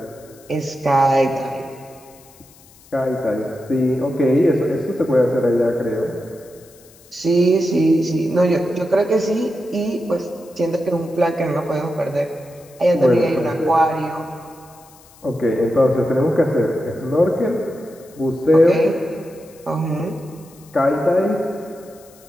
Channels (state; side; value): noise; left; hiss, 26 dB below the sound